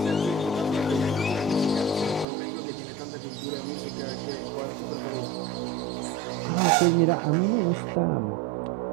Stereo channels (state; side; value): drops out; left; at 2.2 s